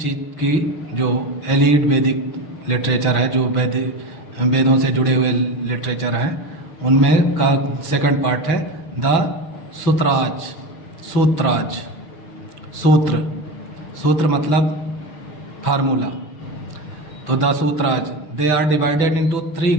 की, जो एलीड वैदिक लिटरेचर है, जो वेदों से जुड़े हुए लिटरेचर हैं, उनमें का सेकंड पार्ट है द सूत्राज। सूत्र मतलब फार्मूला। तो the Sutras they are divided into 3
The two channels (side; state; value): right; late; 6.0 ms